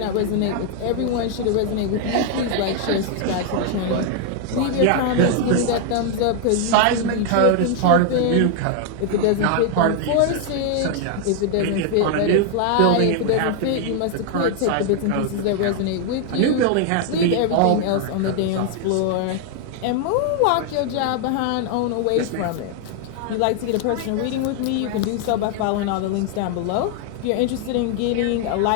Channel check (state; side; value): different; both; correlation 0.00